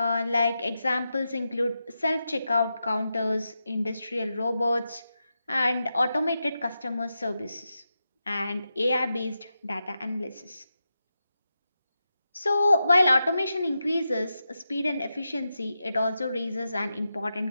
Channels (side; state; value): both; inverted; correlation -0.89